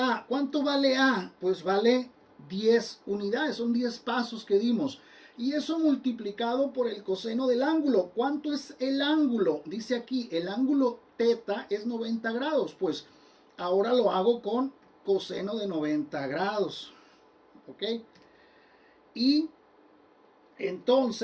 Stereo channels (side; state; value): both; identical; correlation 1.00